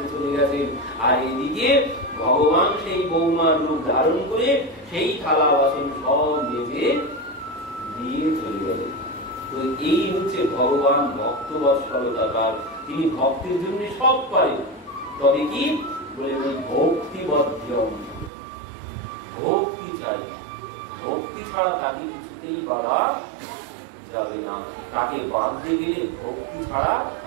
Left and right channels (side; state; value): left; drops out; at 18.3 s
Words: চলে গেছেন। আর এদিকে ভগবান সেই বৌমার রূপ ধারণ করে সেই থালা বাসন সব মেজে দিয়ে চলে গেলেন। তো এই হচ্ছে ভগবান ভক্ত বৎসলতার, তিনি ভক্তের জন্য সব পারেন। তবে কি বলে ওই ভক্তিবদ্ধম, ভক্তি চাই, ভক্তি ছাড়া তাকে কিছুতেই বাধা যাবে না। তাকে বাঁধতে গেলে ভক্তি ছাড়া